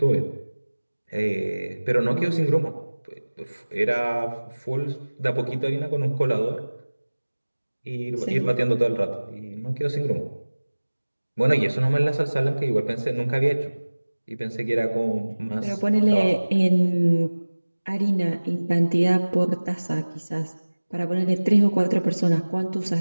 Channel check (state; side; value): inverted; both; correlation -1.00